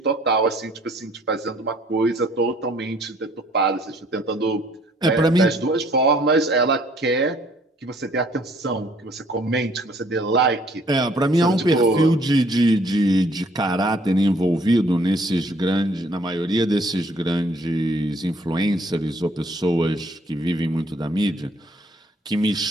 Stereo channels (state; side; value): normal; both; correlation 0.61